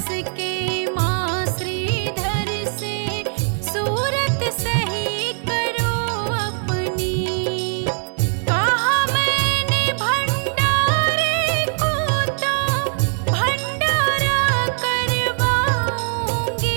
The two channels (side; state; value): left; silent; 65 dB below the other